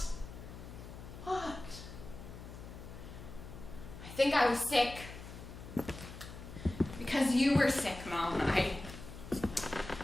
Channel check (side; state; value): left; noise; hum, 13 dB below the sound